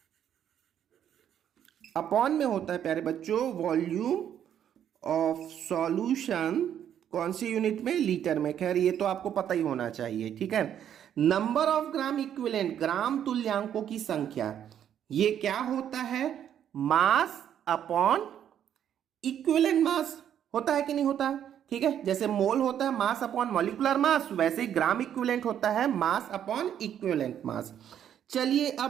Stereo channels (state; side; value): quieter; left; 9.7 dB